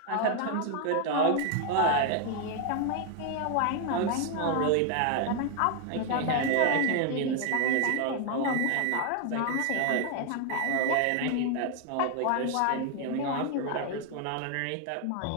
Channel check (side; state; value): both; different; correlation 0.01